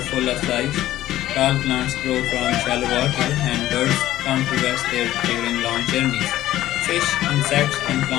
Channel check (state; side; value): quieter; right; 14.2 dB